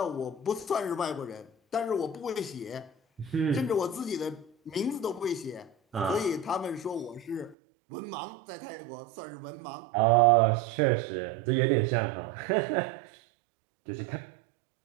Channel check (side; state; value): left; drops out; at 7.6 s